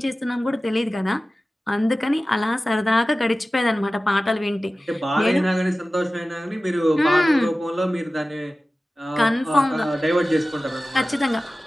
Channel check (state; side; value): normal; both; correlation 0.96